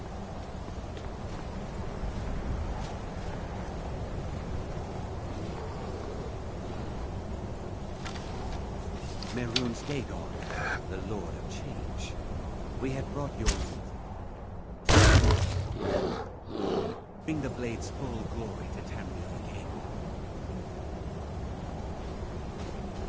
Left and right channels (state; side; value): identical; both; correlation 1.00